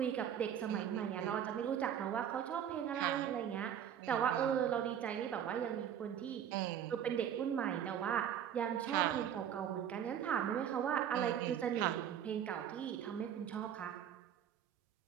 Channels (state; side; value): quieter; left; 9.3 dB